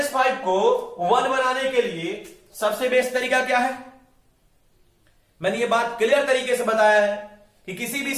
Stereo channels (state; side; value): identical; both; correlation 1.00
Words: को 1 बनाने के लिए सबसे बेस्ट तरीका क्या है, मैंने ये बात क्लियर तरीके से बताया है कि किसी भी